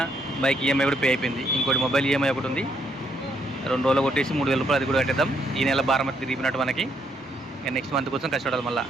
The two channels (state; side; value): normal; both; correlation 0.73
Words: బైక్ ఈఎంఐ కూడా పే అయిపోయింది. ఇంకోటి మొబైల్ ఈఎంఐ ఒకటి ఉంది, 2 రోజులు కొట్టేసి 3000 రూపాయలు అది కూడా కట్టేద్దాం. ఈ నెల భారం తిరిగినట్టు మనకి. నెక్స్ట్ మంత్ కోసం కష్టపడాలి మళ్ళీ.